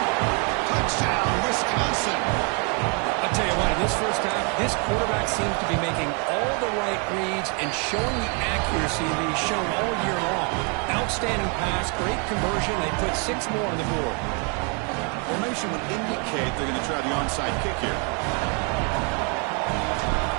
Touchdown, Wisconsin. I'll tell you what, in this first half, this quarterback seems to be making all the right reads and showing the accuracy that he's shown all year long. Outstanding pass, great conversion. They put 6 more on the board. Formation would indicate they're going to try the onside kick here.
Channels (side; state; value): left; quieter; 36.2 dB